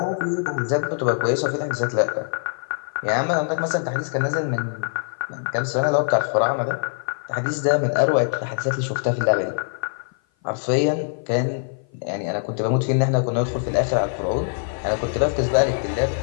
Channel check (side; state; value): right; silent; 55 dB below the other